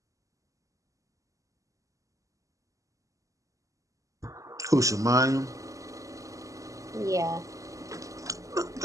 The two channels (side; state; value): left; late; 0.16 ms